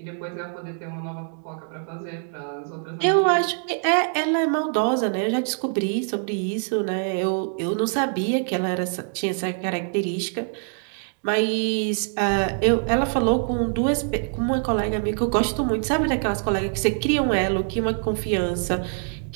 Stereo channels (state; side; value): silent; left; 58 dB below the other